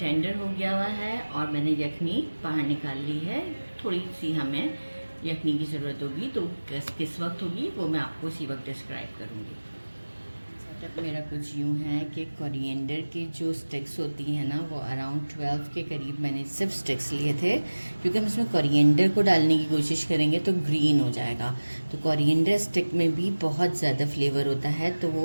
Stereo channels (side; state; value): both; inverted; correlation -1.00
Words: हो गया हुआ है, और मैंने यखनी बाहर निकाल ली है। थोड़ी सी हमें यखनी की ज़रूरत होगी, तो किस वक्त होगी वो मैं आपको उसी वक्त डिस्क्राइब करूँगी। सेटअप मेरा कुछ यूँ है कि कोरिएंडर की जो स्टिक्स होती हैं ना, वो अराउंड 12 के करीब मैंने सिर्फ स्टिक्स लिए थे, क्योंकि हम इसमें कोरिएंडर को डालने की कोशिश करेंगे तो ग्रीन हो जाएगा। तो कोरिएंडर स्टिक में भी बहुत ज़्यादा फ्लेवर होता है, तो